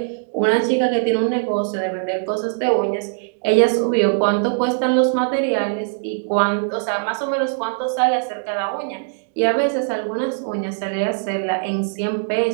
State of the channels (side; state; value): left; silent; digital silence